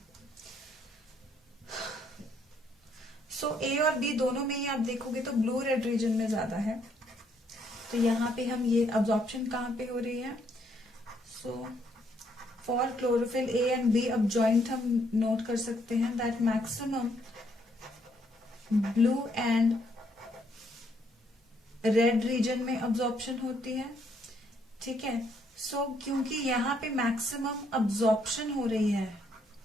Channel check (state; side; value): normal; both; correlation 0.71